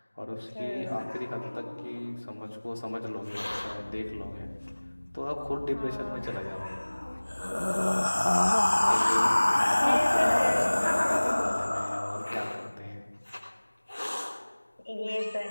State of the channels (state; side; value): inverted; both; correlation -1.00